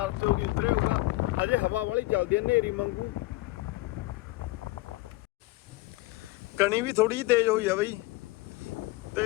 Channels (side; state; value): right; quieter; 20.2 dB